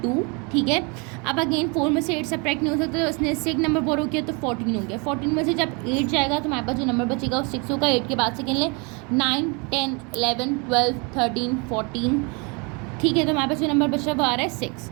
2। ठीक है, अब अगेन 4 में से 8 सब्ट्रैक्ट नहीं हो सकता, तो उसने इससे एक नंबर बोरो किया तो 14 हो गया। 14 में से जब 8 जाएगा तो हमारे पास जो नंबर बचेगा वो 6 होगा। 8 के बाद से गिन लें 9, 10, 11, 12, 13, 14। ठीक है, तो हमारे पास जो नंबर बच रहा है वो आ रहा है 6,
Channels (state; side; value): quieter; left; 31.5 dB